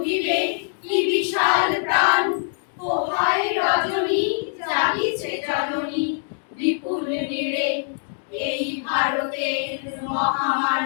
কি বিশাল প্রাণ পোহায় রজনী জাগিছে জননী বিপুল নীড়ে এই ভারতের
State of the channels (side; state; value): right; silent; digital silence